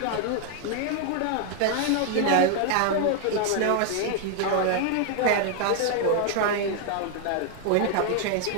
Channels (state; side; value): different; both; correlation 0.00